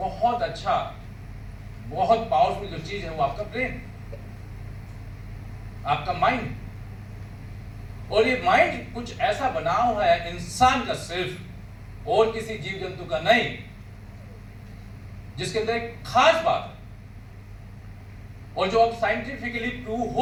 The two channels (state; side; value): identical; both; correlation 1.00